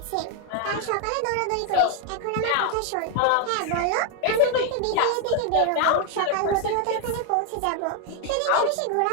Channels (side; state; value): both; different; correlation 0.01